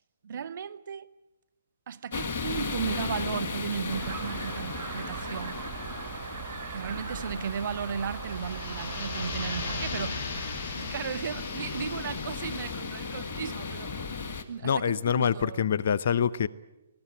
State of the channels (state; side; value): inverted; both; correlation -0.60